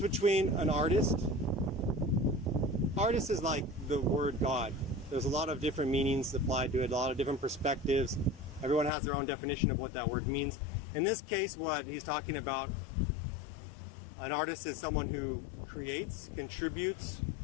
an artist is like the word God. There's a lot of different meanings applied to it, a lot of different perspectives. Everyone has their own definition of what that word means. In this case, what he's talking about, an artist is someone who creates, contributes,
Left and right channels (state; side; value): drops out; right; at 8.9 s